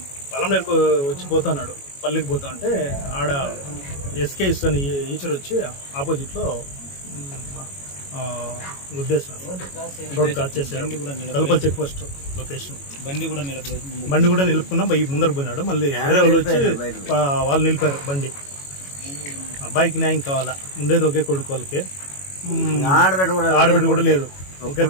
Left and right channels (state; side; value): late; right; 22 ms